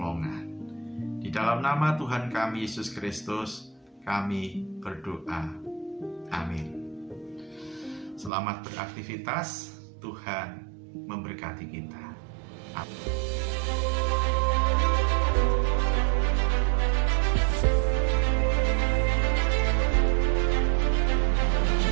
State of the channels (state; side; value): drops out; left; at 8.3 s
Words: Di dalam nama Tuhan kami Yesus Kristus, kami berdoa. Amin. Selamat beraktivitas, Tuhan memberkati kita. Amin.